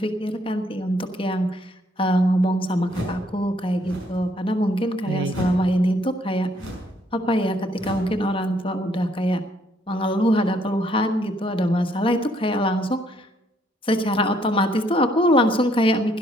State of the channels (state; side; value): normal; both; correlation 0.68